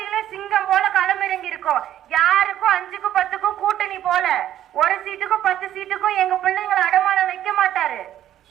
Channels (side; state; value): left; quieter; 11.8 dB